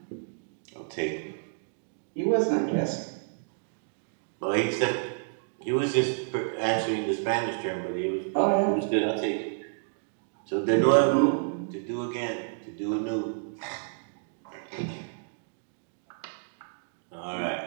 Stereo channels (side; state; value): left; silent; digital silence